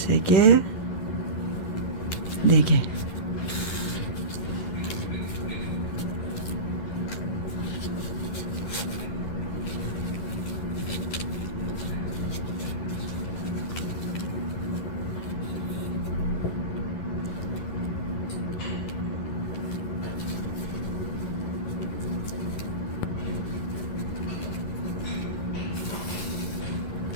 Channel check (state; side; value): late; right; 11 ms